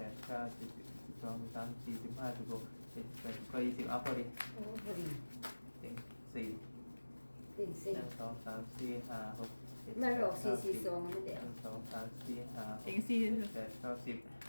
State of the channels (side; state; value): both; inverted; correlation -1.00